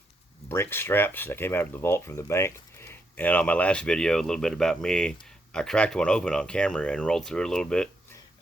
brink straps that came out of the vault from the bank. And on my last video, a little bit about me, I cracked one open on camera and rolled through it a little bit,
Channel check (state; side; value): normal; both; correlation 0.79